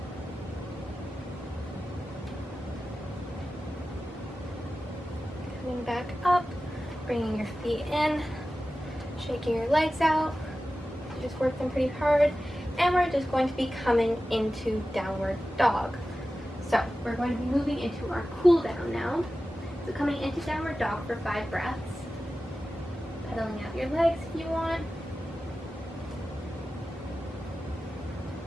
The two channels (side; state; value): both; normal; correlation 0.94